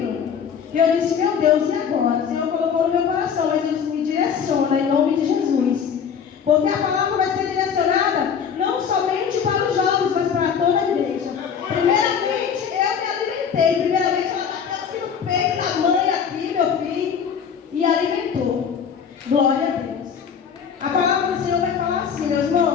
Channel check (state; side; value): quieter; right; 7.2 dB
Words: e eu disse, meu Deus, e agora? O Senhor colocou no meu coração, mas Ele me direciona em nome de Jesus. Porque a palavra vai ser direcionada não somente para os jovens, mas para toda a igreja. Primeiramente, eu me alimentei. Primeiramente, ela bateu aqui no peito da mãe, aqui, meu filho, e alimentou. Glória a Deus. A palavra do Senhor vai falar assim, meus